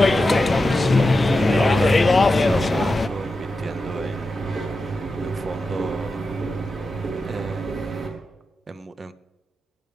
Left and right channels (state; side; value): normal; both; correlation 0.90